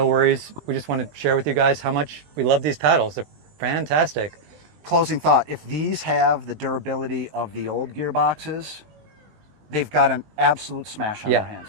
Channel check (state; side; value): late; left; 20 ms